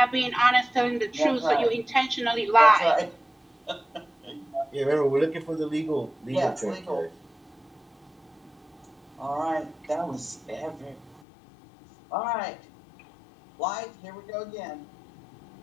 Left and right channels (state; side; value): drops out; right; at 11.2 s